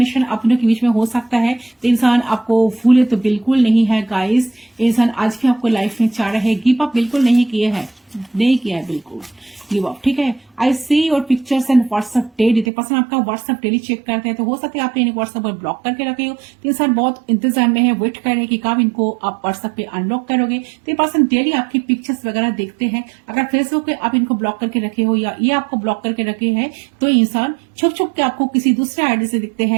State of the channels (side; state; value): left; drops out; at 12.7 s